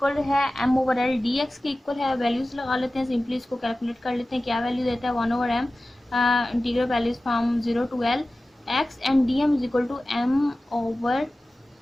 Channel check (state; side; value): normal; both; correlation 0.96